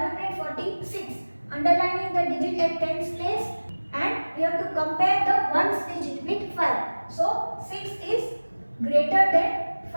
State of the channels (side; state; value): both; inverted; correlation -1.00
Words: underlining the digit at tens place, and we have to compare the ones digit with 5. So 6 is greater than